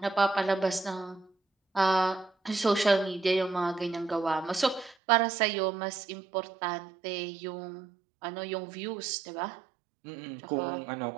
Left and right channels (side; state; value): left; drops out; at 5.0 s